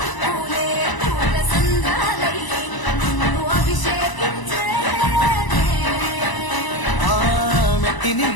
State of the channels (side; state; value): right; late; 1.0 ms